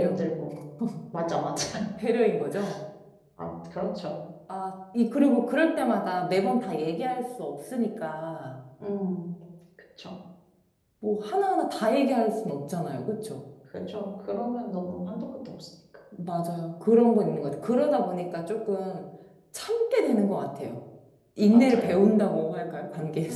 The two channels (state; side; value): identical; both; correlation 1.00